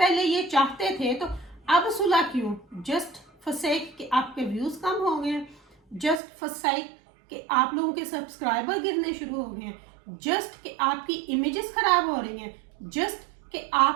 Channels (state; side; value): drops out; left; at 6.2 s